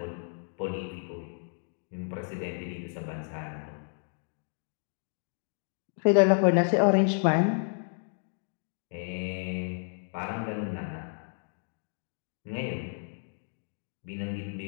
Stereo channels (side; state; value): right; silent; 57 dB below the other